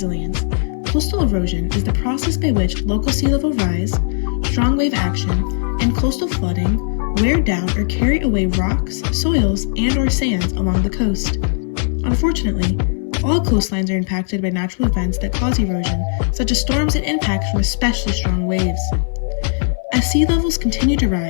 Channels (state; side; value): silent; right; 59 dB below the other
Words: coastal erosion is the process by which local sea level rise, strong wave action, and coastal flooding wear down or carry away rocks, soils, and/or sands along the coast. Unfortunately, all coastlines are impacted by natural events that cause erosion, such as storms and impacts from especially strong waves. As sea levels continue to